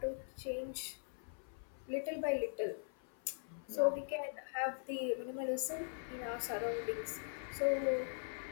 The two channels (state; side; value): silent; right; 50 dB below the other